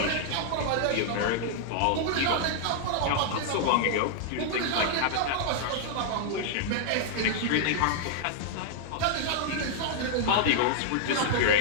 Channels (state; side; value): different; both; correlation -0.01